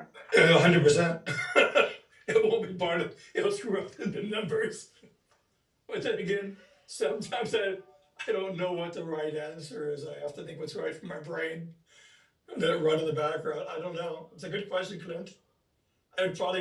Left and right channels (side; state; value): both; identical; correlation 1.00